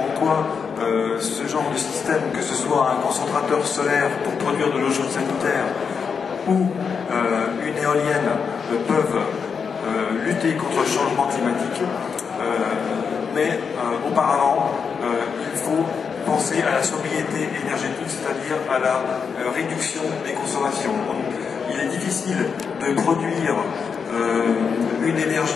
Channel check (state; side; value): quieter; right; 6.1 dB